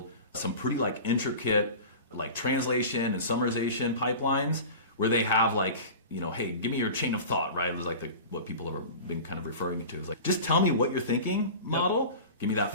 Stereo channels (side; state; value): both; inverted; correlation -0.34